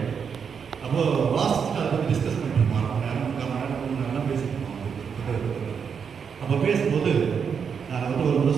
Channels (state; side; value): quieter; left; 6.6 dB